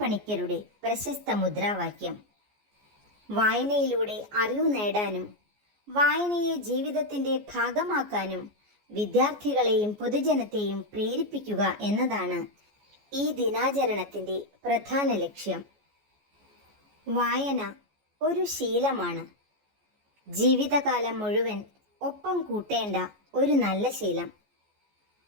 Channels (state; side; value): late; left; 14 ms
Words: പ്രശസ്ത മുദ്രാവാക്യം. വായനയിലൂടെ അറിവ് നേടാനും വായനയെ ജീവിതത്തിൻ്റെ ഭാഗമാക്കാനും വിദ്യാർത്ഥികളെയും പൊതുജനത്തെയും പ്രേരിപ്പിക്കുക എന്നതാണ് ഈ ദിനാചരണത്തിൻ്റെ പ്രധാന ലക്ഷ്യം. വായന ഒരു ശീലമാണ്. ജീവിതകാലം മുഴുവൻ ഒപ്പം കൂട്ടേണ്ട ഒരു നല്ല ശീലം.